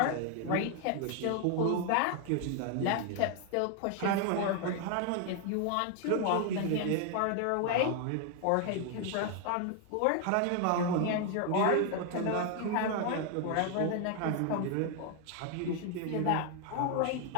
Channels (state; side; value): different; both; correlation 0.00